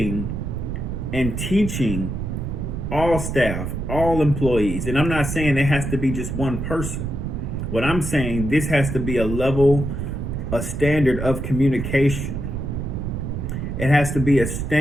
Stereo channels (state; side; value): noise; right; rumble, 4 dB below the sound